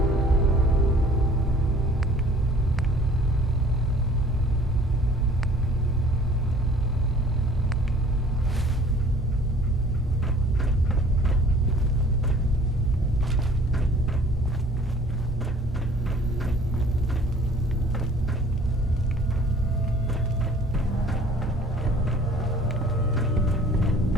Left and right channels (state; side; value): normal; both; correlation 0.52